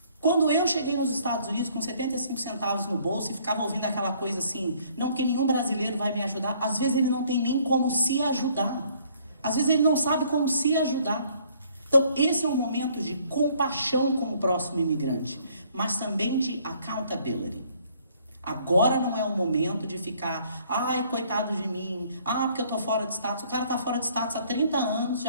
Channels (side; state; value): both; inverted; correlation -0.62